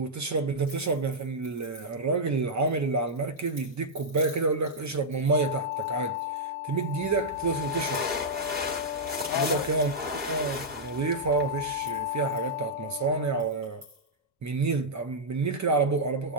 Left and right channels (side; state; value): both; normal; correlation -0.07